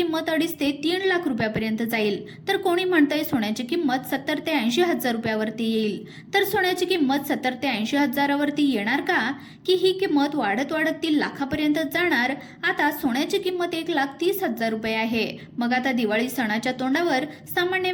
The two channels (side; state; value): both; identical; correlation 1.00